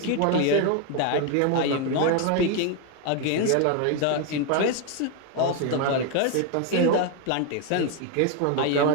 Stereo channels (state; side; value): different; both; correlation 0.01